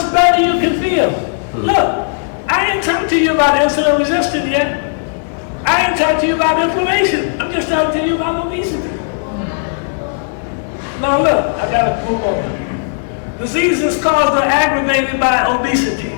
better you can feel. Look, I ain't talking to you about insulin resistance yet. I ain't talking to you about inflammation. I'm just talking to you about obesity. Now look, I gotta move on. Diseases caused or aggravated by obesity.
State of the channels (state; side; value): silent; right; digital silence